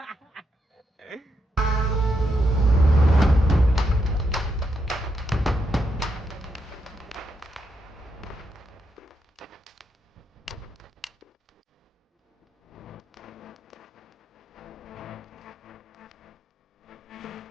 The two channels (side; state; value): both; normal; correlation 0.81